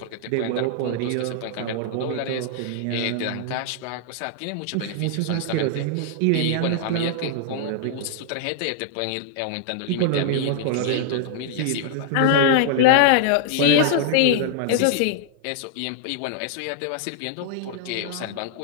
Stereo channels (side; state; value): both; different; correlation -0.01